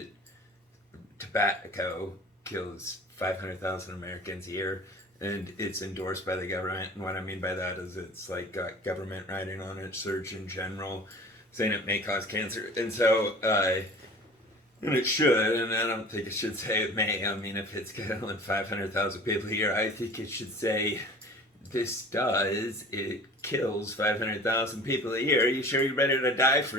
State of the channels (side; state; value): both; normal; correlation 0.43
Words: tobacco kills 500,000 Americans a year, and it's endorsed by the government. And what I mean by that is it's like got government writing on it, Surgeon General, saying it may cause cancer. And so, and it should, and I don't think it should say it may. I mean, if it's killing 500,000 people a year, I think it should say it kills 500,000 people a year. Are you sure you're ready to die